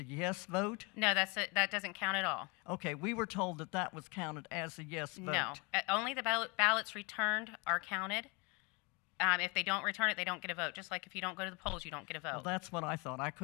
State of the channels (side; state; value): right; quieter; 28.8 dB